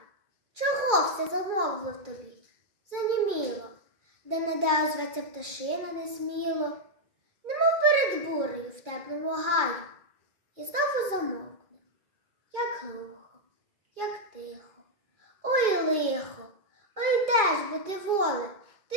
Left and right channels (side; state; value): left; late; 2.3 ms